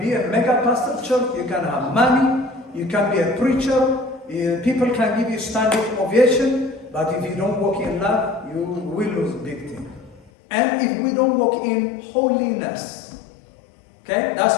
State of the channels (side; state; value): right; drops out; at 10.3 s